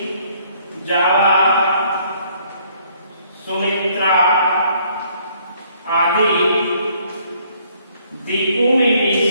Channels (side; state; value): both; inverted; correlation -0.64